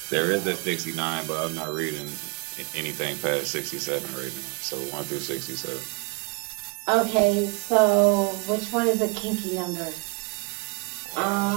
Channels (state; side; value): quieter; left; 31.2 dB